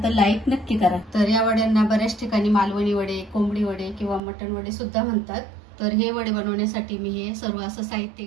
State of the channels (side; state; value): left; drops out; at 4.2 s